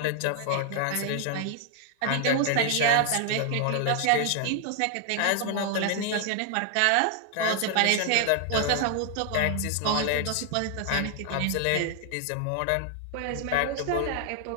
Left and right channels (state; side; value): different; both; correlation 0.00